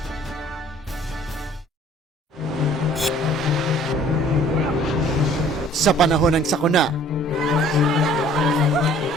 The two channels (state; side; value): normal; both; correlation 0.54